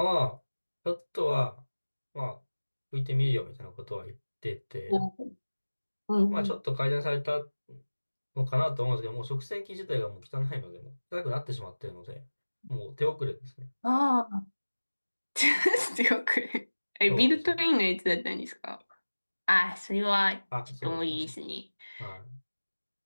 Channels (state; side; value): inverted; both; correlation -1.00